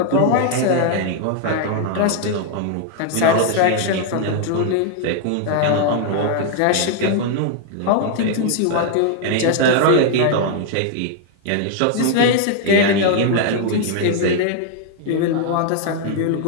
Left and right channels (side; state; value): both; different; correlation 0.00